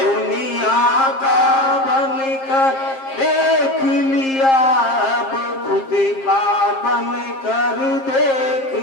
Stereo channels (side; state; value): right; late; 7.5 ms